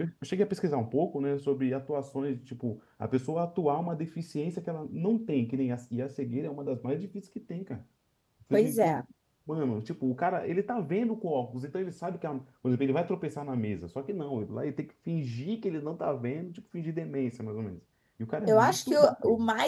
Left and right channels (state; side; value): identical; both; correlation 1.00